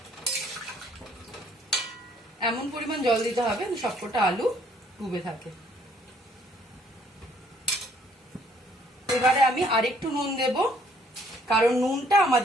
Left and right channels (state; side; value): normal; both; correlation 0.64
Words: এমন পরিমাণ জল দিতে হবে সবকটা আলু ডুবে থাকে। এবারে আমি আরেকটু নুন দেব, কারণ নুনটা